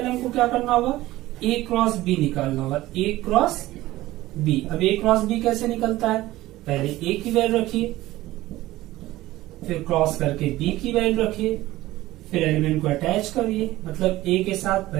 हमको क्या करना होगा, A क्रॉस बी निकालना होगा, A क्रॉस बी। अब ए क्रॉस बी कैसे निकलता है, पहले ए की वैल्यू रखिए, फिर क्रॉस करके बी की वैल्यू रखिए, फिर एलिमेंट को अटैच करिए। मतलब ए के साथ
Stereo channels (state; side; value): quieter; left; 16.9 dB